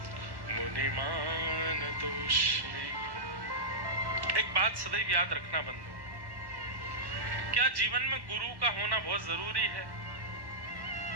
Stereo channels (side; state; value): left; late; 1.1 ms